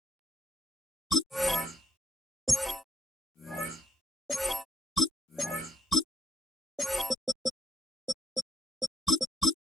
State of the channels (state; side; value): normal; both; correlation 0.75